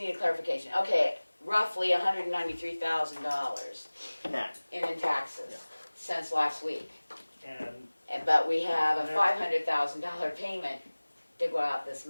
clarification. Okay, roughly $193,000 Net. in taxes since last week. And But we have a $500,000 payment to go out this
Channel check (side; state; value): both; inverted; correlation -1.00